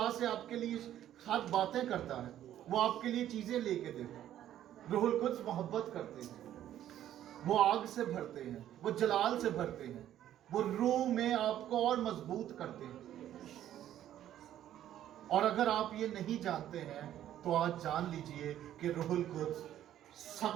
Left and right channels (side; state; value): left; quieter; 11.7 dB